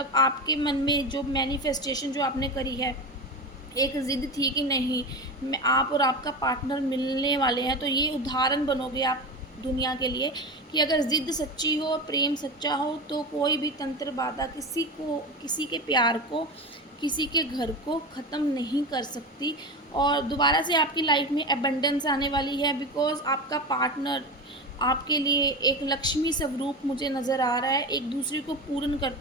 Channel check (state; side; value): normal; both; correlation 0.24